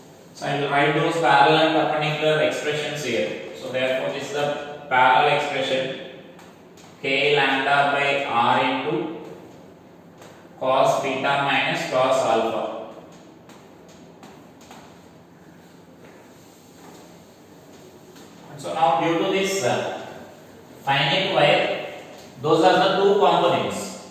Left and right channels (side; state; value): both; identical; correlation 1.00